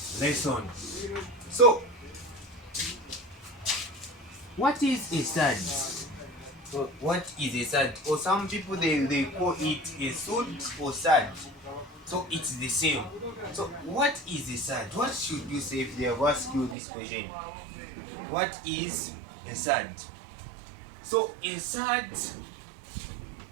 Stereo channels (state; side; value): drops out; left; at 16.8 s